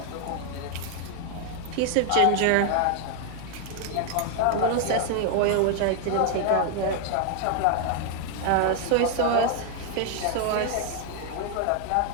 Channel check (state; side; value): different; both; correlation 0.00